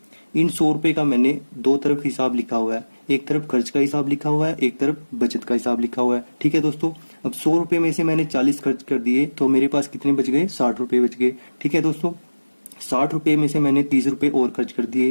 इन 100 रुपए का मैंने दो तरफ हिसाब लिखा हुआ है, एक तरफ खर्च का हिसाब लिखा हुआ है, एक तरफ बचत का हिसाब लिखा हुआ है। ठीक है दोस्तों, अब 100 रुपए में से मैंने 40 खर्च कर दिए तो मेरे पास कितने बच गए, 60 रुपए बच गए। ठीक है दोस्तों, 60 रुपए में से मैंने 30 रुपए और खर्च कर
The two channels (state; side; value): inverted; both; correlation -1.00